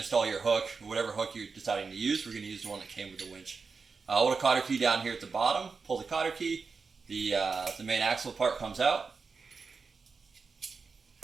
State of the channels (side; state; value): left; quieter; 4.8 dB